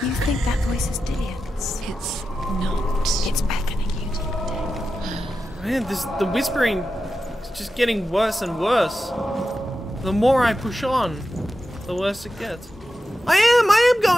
You think that voice is Dillian's? It's not. It's beckoning you to protect. Man, the whispering is just getting worse and worse. The more I push on, the worse it gets. I am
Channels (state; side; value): normal; both; correlation 0.91